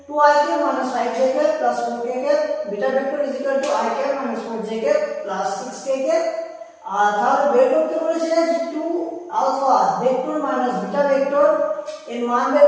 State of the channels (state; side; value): identical; both; correlation 1.00